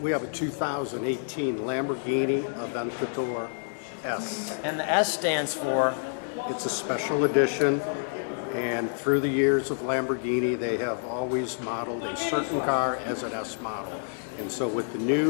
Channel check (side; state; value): right; silent; digital silence